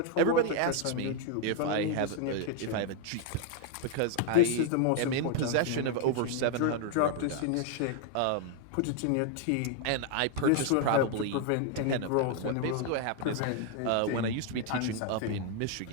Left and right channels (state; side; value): different; both; correlation 0.00